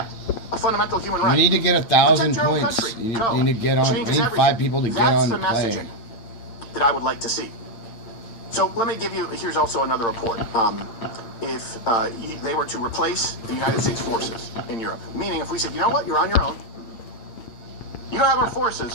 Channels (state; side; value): late; right; 8.7 ms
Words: a fundamental human right. You need to get 1,000 points. You need to get on. I need 5 people to get on the play. That's the messaging that I would like to see. So let me give you, here's also another report. If they were to replace the United States forces in Europe, meaning if we said, you know what, you're on your own, you don't have our